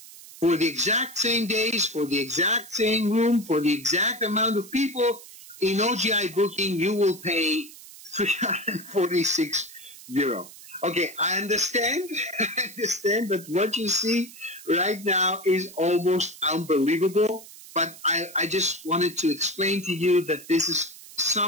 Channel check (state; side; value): noise; right; hiss, 18 dB below the sound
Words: For the exact same days, for the exact same room, for the exact amount of people, in OGI Booking, you will pay 346 euro. Okay, I understand that what you see right now is almost unbelievable, but I just wanted to explain to you that this is